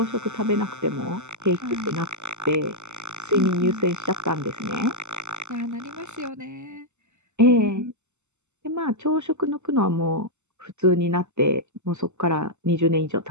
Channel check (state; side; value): late; left; 0.83 ms